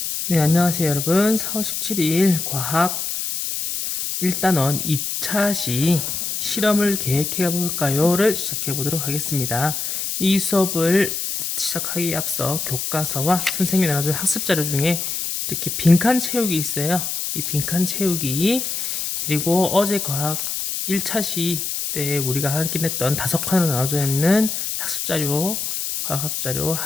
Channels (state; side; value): noise; left; hiss, 3 dB below the sound